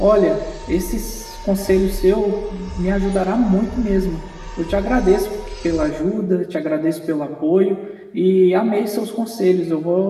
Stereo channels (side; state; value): both; identical; correlation 1.00